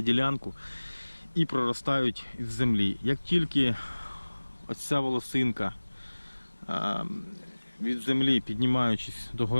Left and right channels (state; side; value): inverted; both; correlation -1.00